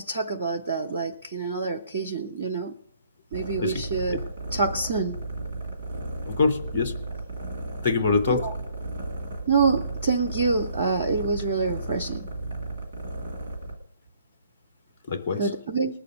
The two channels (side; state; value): both; inverted; correlation -0.62